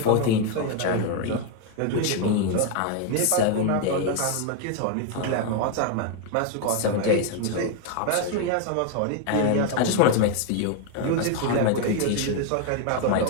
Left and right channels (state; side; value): different; both; correlation 0.01